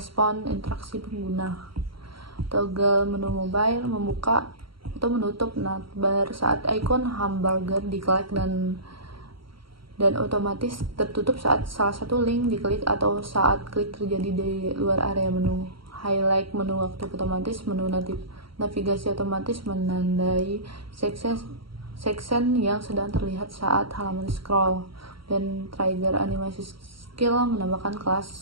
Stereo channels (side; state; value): left; late; 0.74 ms